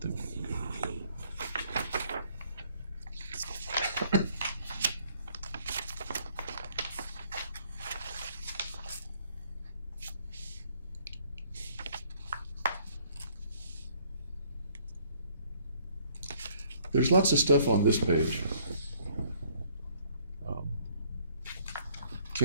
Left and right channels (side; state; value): both; inverted; correlation -0.62